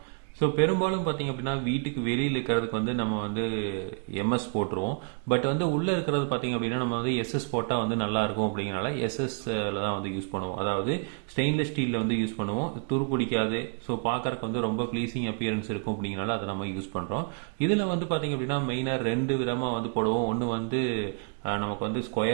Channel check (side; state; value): left; quieter; 39.1 dB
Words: ஸோ பெரும்பாலும் பார்த்திங்க அப்படின்னா வீட்டுக்கு வெளியில் இருக்கிறதுக்கு வந்து நம்ம வந்து எம்எஸ் போட்டுருவோம். பட் வந்து உள்ளே இருக்கிறது பார்த்திங்க அப்படின்னா நம்ம வந்து எஸ்எஸ் போட்டால் வந்து நல்லாயிருக்கும் அப்படிங்கிறனால எஸ்எஸ்ல தான் வந்து யூஸ் பண்ணுவோம். அதாவது ஸ்டெயின்லெஸ் ஸ்டீலில் வந்து யூஸ் பண்ணுவோம். துரு பிடிக்காது. ஸோ பார்க்குறக்கு வந்து ரொம்ப ப்ளீஸிங் அப்பியரன்ஸ் இருக்கும் அப்படிங்கிறனால அதை நம்ம யூஸ் பண்ணுறோம். இதில் வந்து பார்த்திங்க அப்படின்னா மெயினாக ரெண்டு விதமாக வந்து போடுவோம். ஒன்று வந்து நமக்கு வந்து